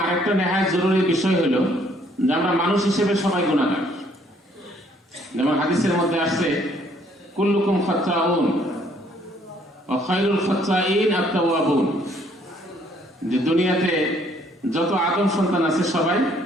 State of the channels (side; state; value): both; normal; correlation 0.64